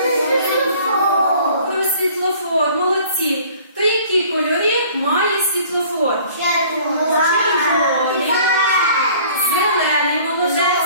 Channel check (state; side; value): inverted; both; correlation -0.52